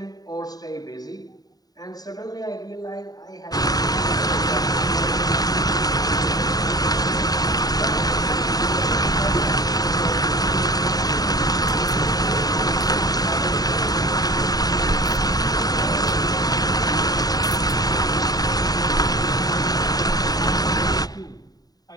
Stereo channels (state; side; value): late; right; 0.18 ms